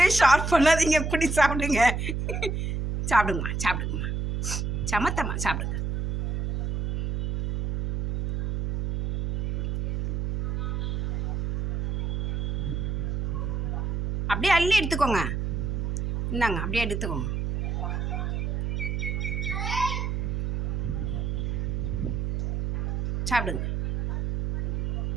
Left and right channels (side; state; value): right; noise; hum, 1 dB below the sound